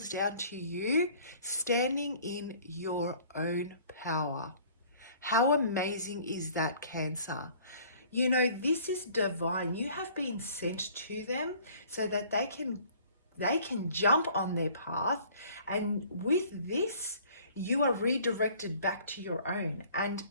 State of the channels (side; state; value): both; inverted; correlation -0.53